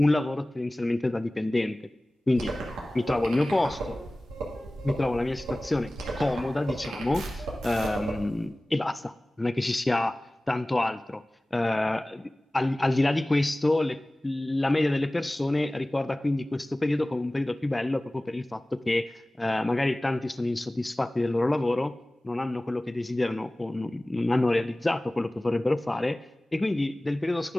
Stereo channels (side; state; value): both; normal; correlation 0.98